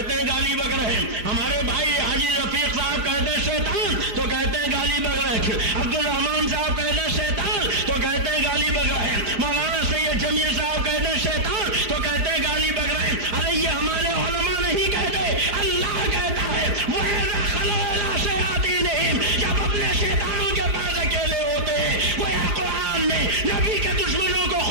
ہیں گالی بک رہے۔ ہمارے بھائی حاجی رفیق صاحب کہہ دے شیطان تو کہتے ہیں گالی بک رہے۔ عبد الرحمان صاحب کہہ دے شیطان تو کہتے ہیں گالی بک رہے۔ مولانا سید جمیل صاحب کہہ دے شیطان تو کہتے ہیں گالی بک رہے۔ ارے یہ ہمارے علماء نہیں کہتے، اللہ کہتا ہے وَإِذَا خَلَوْا إِلَىٰ شَيَاطِینِهِمْ، جب اپنے شیطانوں کے پاس اکیلے ہوتے ہیں۔ گویا قرآن نے نبی کے دشمنوں کو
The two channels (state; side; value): late; left; 4.5 ms